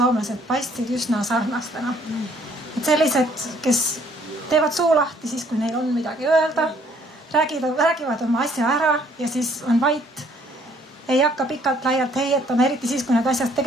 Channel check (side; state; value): both; normal; correlation 0.62